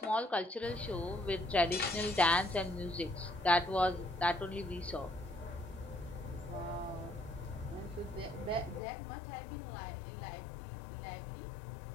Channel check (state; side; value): drops out; right; at 8.8 s